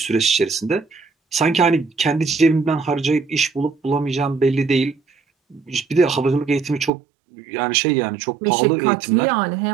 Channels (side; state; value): left; drops out; at 6.9 s